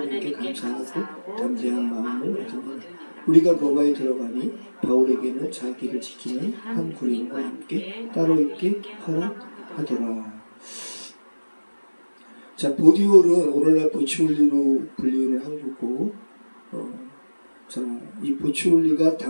감사하고 담대한 마음을 얻으니라. 우리가 로마에 들어가니 바울에게는 자기를 지키는 한 군인과 함께 따로 있게 허락하더라. 자, 보디올은 오늘날 보치올리로 불리는 항구고, 자, 이 보치올리가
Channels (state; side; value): inverted; both; correlation -1.00